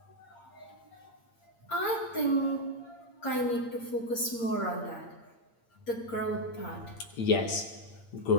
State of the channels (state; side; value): late; right; 8.7 ms